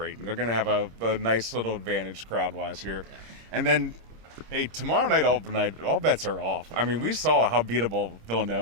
They're going to have a nice little advantage crowd-wise here, and then. Hey, tomorrow night, all bets are off. I mean, we saw how beatable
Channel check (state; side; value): late; left; 26 ms